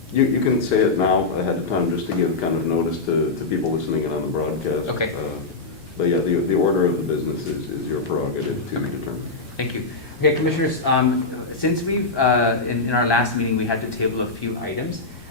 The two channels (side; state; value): right; quieter; 3.7 dB